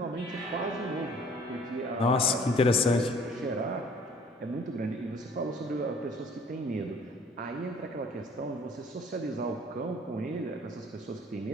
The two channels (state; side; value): normal; both; correlation 0.54